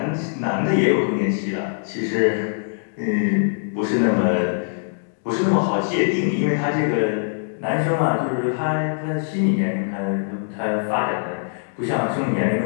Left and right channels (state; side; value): silent; right; digital silence